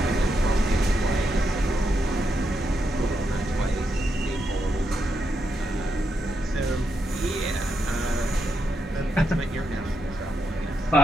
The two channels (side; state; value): both; normal; correlation 0.82